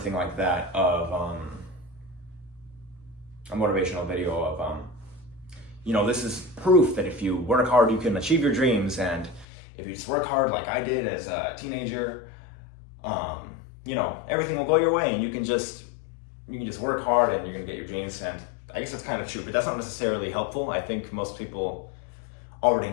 like that of a motivational video of you know, this is proof that if you work hard you can achieve your dreams, and if you just work hard like I did as a teenager, you know, everything will go your way and you can just work hard and you're gonna get your dreams. And I guess that's kind of true, but that's not necessarily helpful. I think most people already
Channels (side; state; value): right; drops out; at 9.5 s